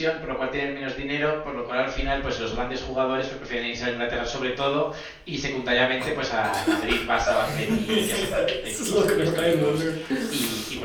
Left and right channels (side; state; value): both; identical; correlation 1.00